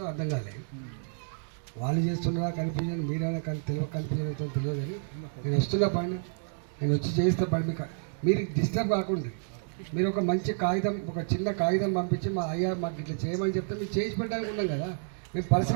అర్థం కాలేదు. వాళ్ళు చేస్తున్నారా కన్ఫ్యూజన్, మీరైనా కన్ఫ్యూజన్ అవుతుందో తెలియదు. కానీ నేను వస్తున్నా పని, నేను వచ్చి చేస్తే పని మీరు డిస్టర్బ్ కాకుండా మీరు ఒక మంచి కాగితం, ఒక చిన్న కాగితం పంపించి అయ్యా మాకు ఇట్లా చేయమని చెప్తే మీరు చేసి పెట్టడానికి ఉన్నాం కదా. మేము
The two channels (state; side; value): silent; left; digital silence